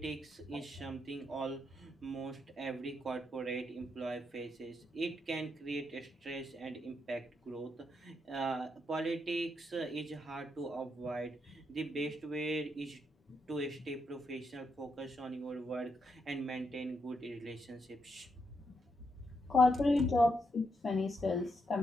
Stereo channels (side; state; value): both; normal; correlation 0.80